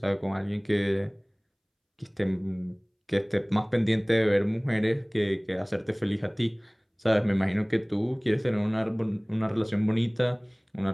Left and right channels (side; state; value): both; identical; correlation 1.00